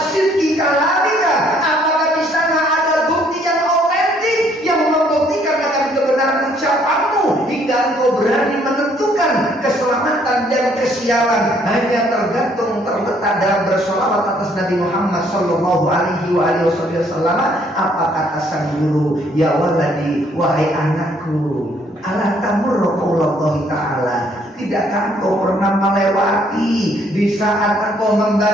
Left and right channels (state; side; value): normal; both; correlation 0.65